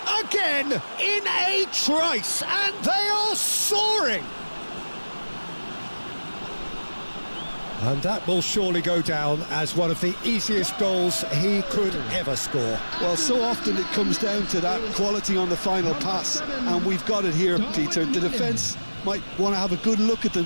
Again, in a trice, and they are soaring! And that will surely go down as one of the easiest goals he could ever score. Well, so often it comes down to that quality on the final pass, and we've got it here, Peter. The defence might want to have a good look at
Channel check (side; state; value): both; inverted; correlation -1.00